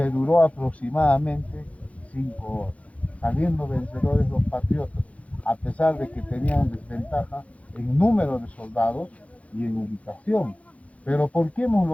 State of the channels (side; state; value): right; late; 0.065 ms